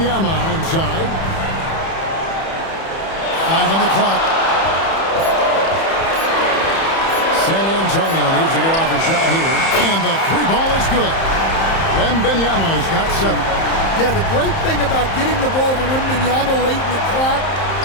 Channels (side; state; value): right; late; 31 ms